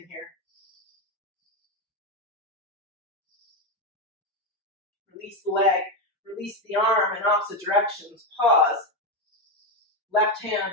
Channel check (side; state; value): both; normal; correlation 0.09